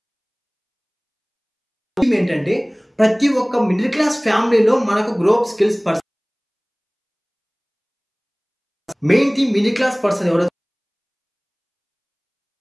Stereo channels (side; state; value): both; identical; correlation 1.00